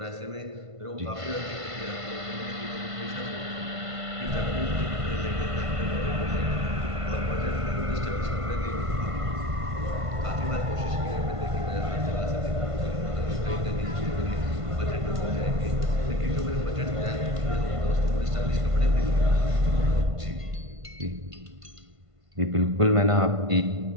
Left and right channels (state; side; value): late; left; 1.5 ms